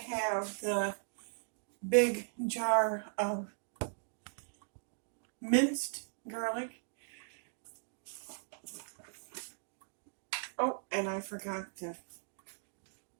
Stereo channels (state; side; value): silent; left; digital silence